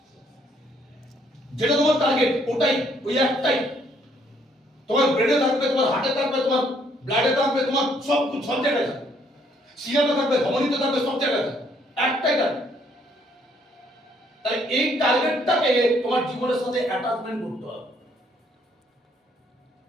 টার্গেট, ওটাই, ওই একটাই। তোমার ব্রেনে থাকবে, তোমার হার্টে থাকবে, তোমার ব্লাডে থাকবে, তোমার সব জায়গায় থাকবে, শিরাতে থাকবে, ধমনীতে থাকবে, সব জায়গায় থাকবে, একটাই টার্গেট। তাই এই টার্গেটটাকে তোমার জীবনের সাথে অ্যাটাচমেন্ট করতে হবে।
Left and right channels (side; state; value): both; normal; correlation 0.67